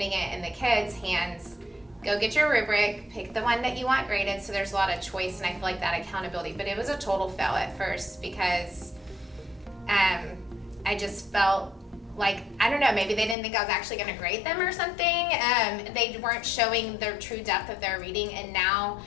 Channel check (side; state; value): right; drops out; at 13.4 s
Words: it in the kids' hands. Go get your rubric, pick the one that you want graded, so there's a lot of choice, and I feel like that accountability. But it was a total fail at first because I just felt like, I don't know, maybe they didn't think I was actually going to grade them or something. They weren't showing the true depth of their reading, and now